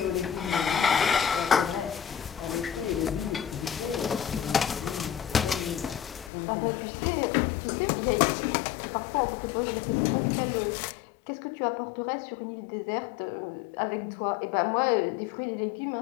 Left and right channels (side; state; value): right; drops out; at 6.3 s